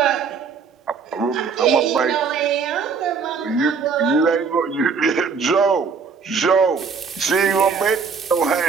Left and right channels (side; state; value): left; quieter; 5.5 dB